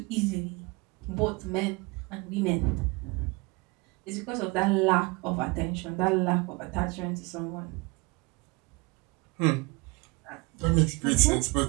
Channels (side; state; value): left; quieter; 27.2 dB